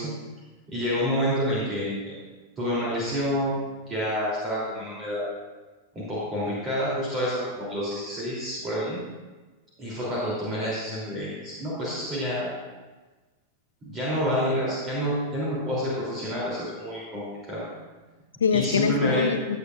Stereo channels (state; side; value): normal; both; correlation -0.08